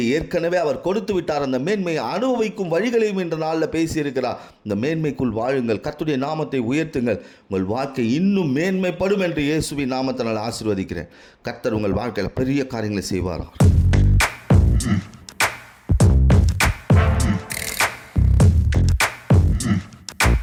ஏற்கனவே அவர் கொடுத்து விட்டார். அந்த மேன்மையை அனுபவிக்கும் வழிகளையும் இந்த நாளில் பேசியிருக்கிறார். இந்த மேன்மைக்குள் வாழுங்கள், கர்த்தருடைய நாமத்தை உயர்த்துங்கள், உங்கள் வாழ்க்கை இன்னும் மேன்மைப்படும் என்று இயேசுவின் நாமத்தினால் ஆசீர்வதிக்கிறேன். கர்த்தர் உங்கள் வாழ்க்கையில் பெரிய காரியங்களை செய்வாராம்.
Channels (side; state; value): both; identical; correlation 1.00